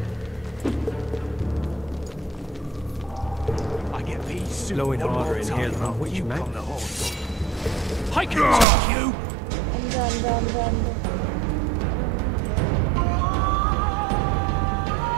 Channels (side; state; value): left; drops out; at 8.7 s